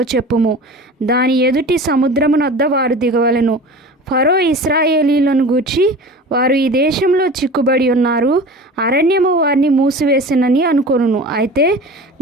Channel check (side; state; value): both; normal; correlation 0.36